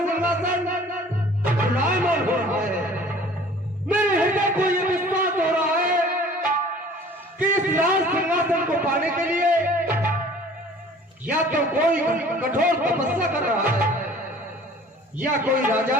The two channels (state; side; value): normal; both; correlation 0.49